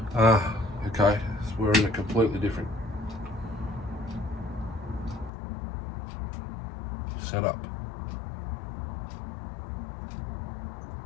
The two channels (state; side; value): drops out; right; at 5.3 s